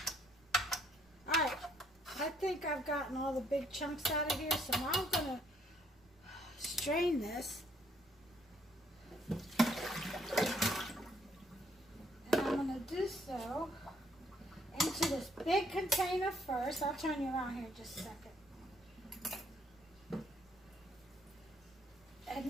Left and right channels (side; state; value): right; noise; rumble, 29 dB below the sound